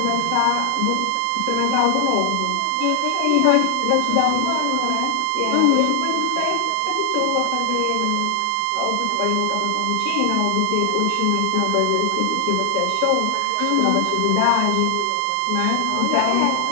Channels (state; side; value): different; both; correlation 0.00